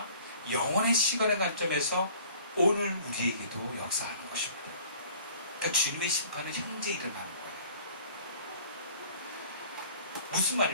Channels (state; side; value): inverted; both; correlation -0.51